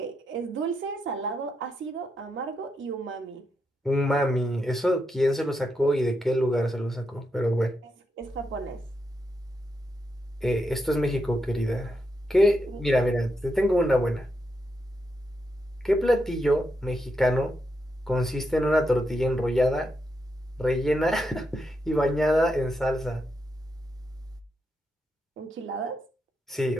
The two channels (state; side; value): normal; both; correlation 0.83